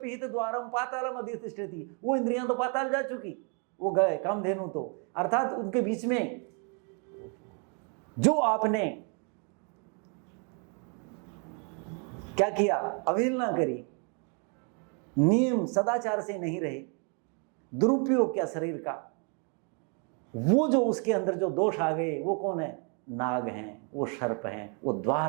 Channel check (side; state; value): left; quieter; 38.1 dB